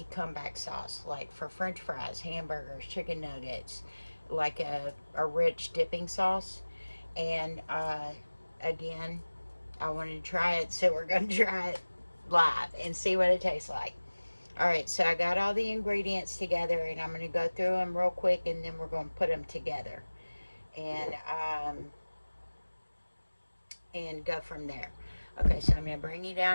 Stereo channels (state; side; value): inverted; both; correlation -1.00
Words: comeback sauce, like for french fries, hamburgers, chicken nuggets, like a rich dipping sauce. And again, I wanted to try it, so we're going to try it live and see what it tastes like. Alright, so I got all the ingredients together, and I'm going to go through them real quick, and then we're going to put them together and go from there. Okay, so I'm going to bring you